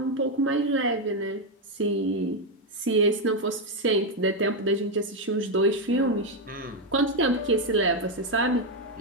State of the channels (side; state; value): both; normal; correlation 0.04